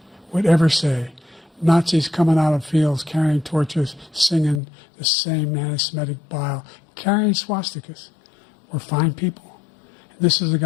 would ever say Nazis coming out of fields carrying torches, singing the same anti-Semitic bile, carrying swastikas were fine people? And this is a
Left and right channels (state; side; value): drops out; right; at 4.6 s